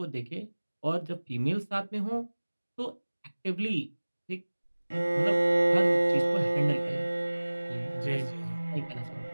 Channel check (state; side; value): inverted; both; correlation -1.00